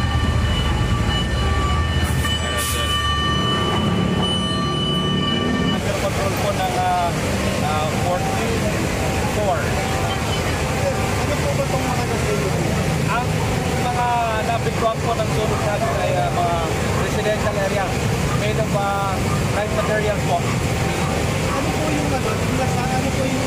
control po ng 44. Ano po ba itong mga nasunog? Ang mga nabigwang po ng sunog natin ay mga residential area made of light materials po. Ano po yung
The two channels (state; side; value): identical; both; correlation 1.00